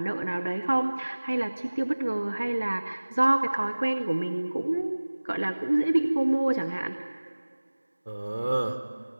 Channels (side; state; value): both; inverted; correlation -1.00